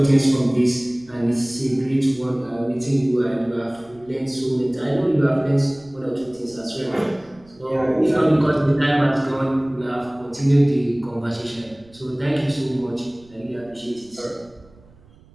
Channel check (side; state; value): right; noise; rumble, 27 dB below the sound